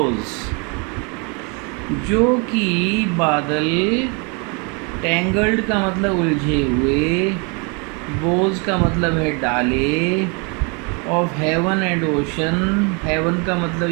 जो कि बादल, टेंगल्ड का मतलब उलझे हुए, बोज का मतलब है डाले, of heaven and ocean, heaven का मतलब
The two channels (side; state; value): left; quieter; 33.0 dB